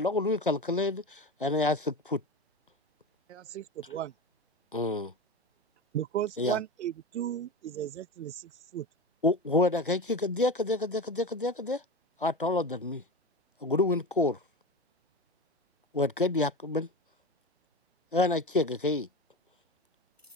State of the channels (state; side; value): normal; both; correlation 0.26